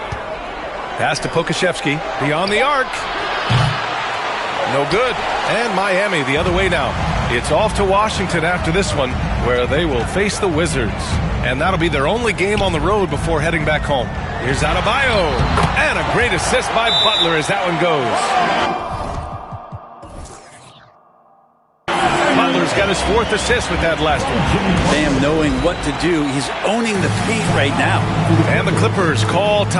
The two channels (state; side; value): identical; both; correlation 1.00